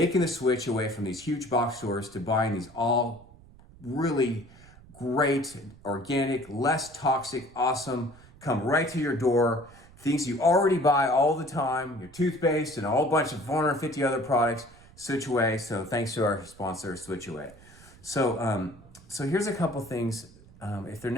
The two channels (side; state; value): right; noise; rumble, 23 dB below the sound